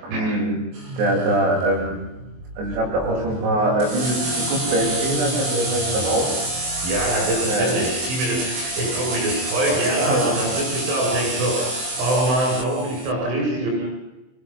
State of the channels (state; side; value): late; left; 23 ms